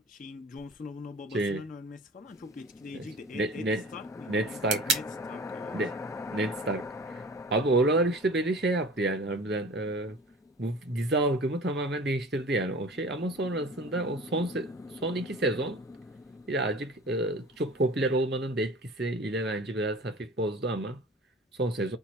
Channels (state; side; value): normal; both; correlation 0.42